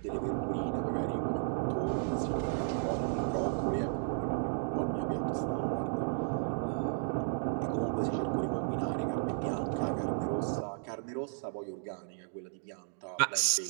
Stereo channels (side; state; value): left; silent; digital silence